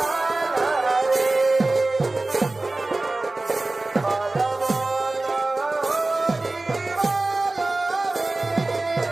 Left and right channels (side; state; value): left; quieter; 3.1 dB